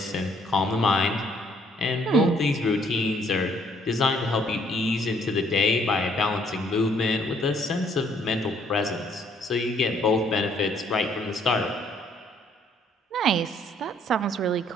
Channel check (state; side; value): normal; both; correlation 0.65